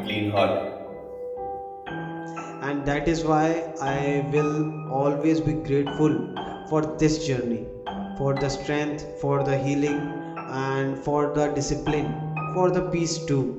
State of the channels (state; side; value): identical; both; correlation 1.00